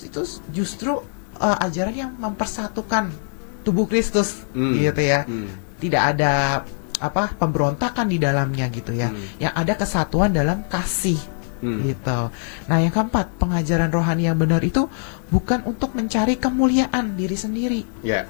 itu justru ajaran yang mempersatukan tubuh Kristus gitu ya. Tidak ada pemberontakan di dalamnya gitu ya. Yang ada kesatuan dalam kasih gitu. Nah, yang keempat, pengajaran rohani yang benar itu bukan untuk mencari kemuliaan diri sendiri. Ya,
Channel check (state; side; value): silent; right; 59 dB below the other